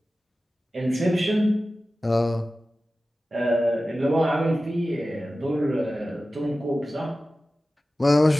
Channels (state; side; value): normal; both; correlation 0.95